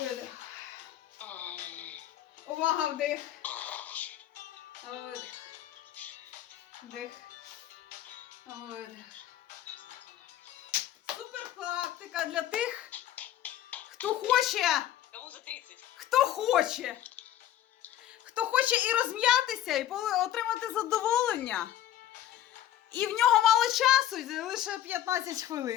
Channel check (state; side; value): quieter; right; 12.3 dB